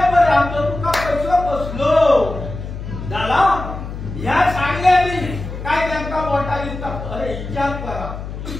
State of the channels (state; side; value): noise; left; hum, 9 dB below the sound